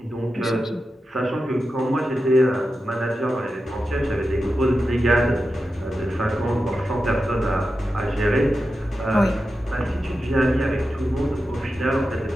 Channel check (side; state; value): both; normal; correlation 0.91